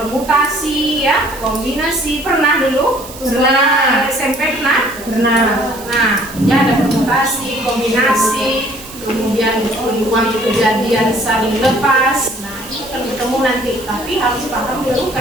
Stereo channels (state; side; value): noise; right; hiss, 16 dB below the sound